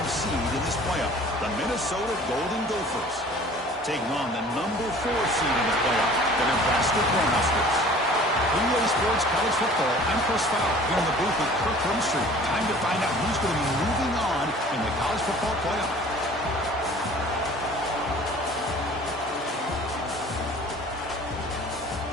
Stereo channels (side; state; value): both; normal; correlation 0.48